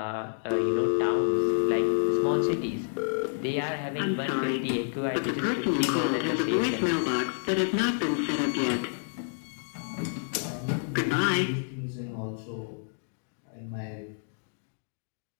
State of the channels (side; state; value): right; silent; digital silence